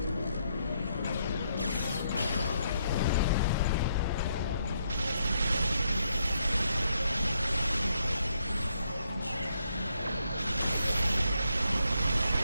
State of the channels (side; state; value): both; inverted; correlation -0.76